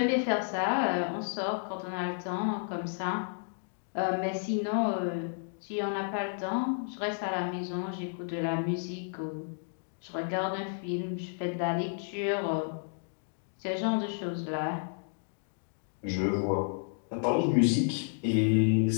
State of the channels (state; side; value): silent; right; digital silence